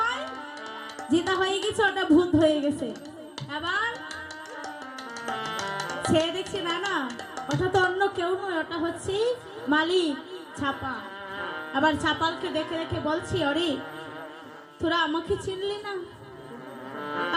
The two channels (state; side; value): identical; both; correlation 1.00